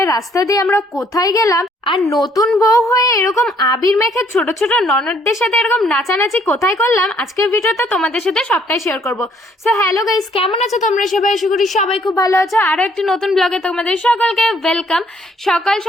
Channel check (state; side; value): normal; both; correlation 0.65